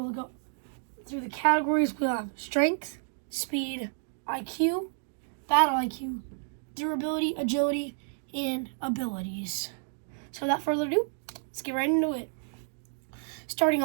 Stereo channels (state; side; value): silent; left; digital silence